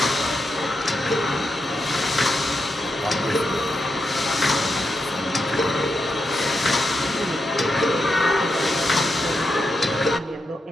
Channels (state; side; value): normal; both; correlation 0.85